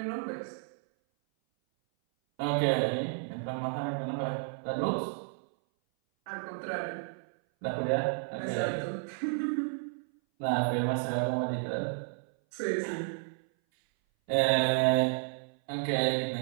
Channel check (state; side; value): silent; left; 57 dB below the other